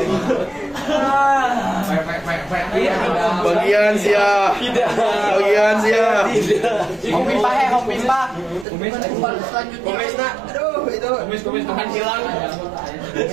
Bagian sia. Bagian sia. Kopi pahe, kopi pak. Kumis nak. Aduh, itu. Kumis akan hilang.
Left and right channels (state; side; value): drops out; left; at 8.7 s